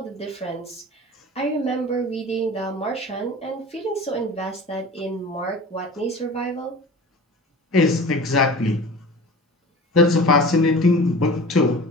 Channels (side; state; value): both; normal; correlation 0.38